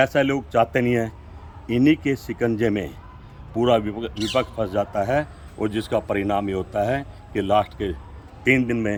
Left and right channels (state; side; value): identical; both; correlation 1.00